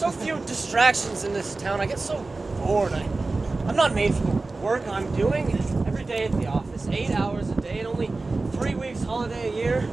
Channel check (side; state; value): left; quieter; 3.5 dB